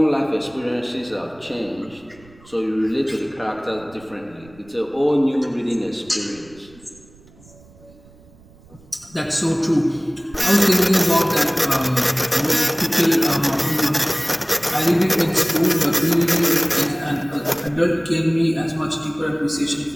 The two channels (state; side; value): noise; right; rumble, 25 dB below the sound